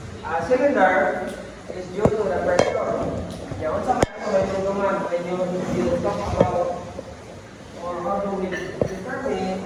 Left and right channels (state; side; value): identical; both; correlation 1.00